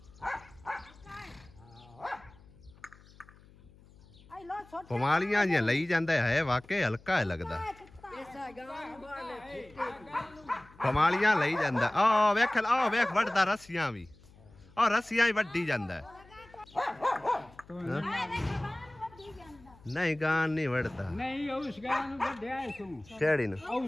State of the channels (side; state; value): left; noise; hum, 24 dB below the sound